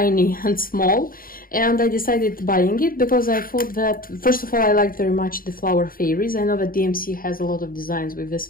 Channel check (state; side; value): late; right; 0.41 ms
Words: and small, and I decided buying it because I thought that, first of all, I liked very much the flower fairies. I know that DMC has a lot of designs with this